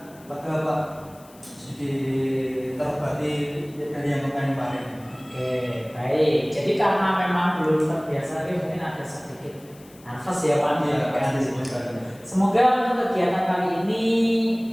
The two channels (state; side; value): noise; left; hiss, 25 dB below the sound